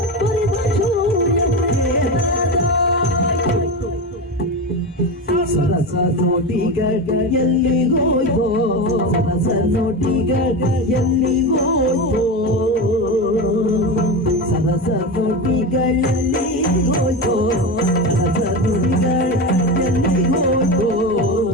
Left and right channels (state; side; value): normal; both; correlation 0.21